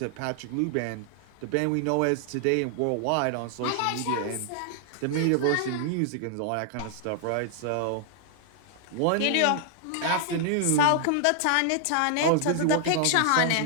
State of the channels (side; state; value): both; different; correlation 0.00